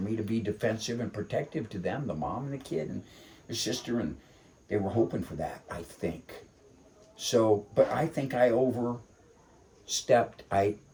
to be defensive and protective to them, the mom and the kid and the sister, and they were hoping for that, I think. So, but I think I overstepped. I'm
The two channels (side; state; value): both; identical; correlation 1.00